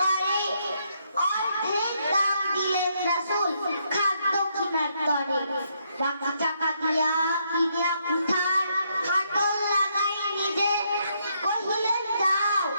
করে, অর্ধেক দাম দিলেন রাসূল খাদ্য কিনার তরে। বাকি টাকা দিয়া কিনিয়া কুঠার হাতল লাগাই নিজে, কহিলেন যাও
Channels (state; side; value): inverted; both; correlation -0.75